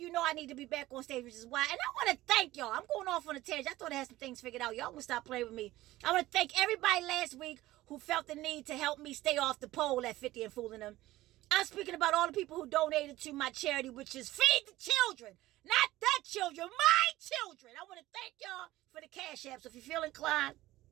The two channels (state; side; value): quieter; left; 16.7 dB